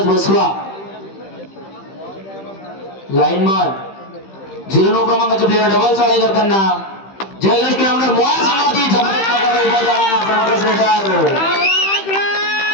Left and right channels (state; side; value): late; right; 15 ms